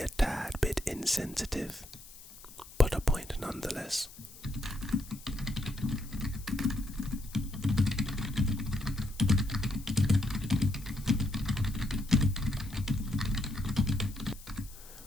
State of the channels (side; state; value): left; noise; hiss, 19 dB below the sound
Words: tad bit insensitive, but a point nonetheless.